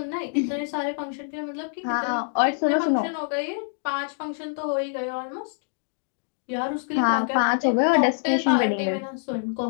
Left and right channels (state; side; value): silent; right; digital silence